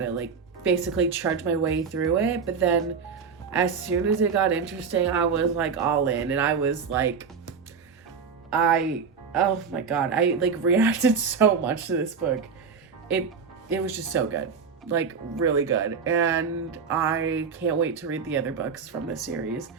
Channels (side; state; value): left; quieter; 5.9 dB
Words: like, basically trudge my way through it. But then as soon as it got interesting, I was, like, all in, and I was, like, oh my god, I, like, reacted so much to this book. It was just so good. Like, really good. And I can't wait to read the other books from this series.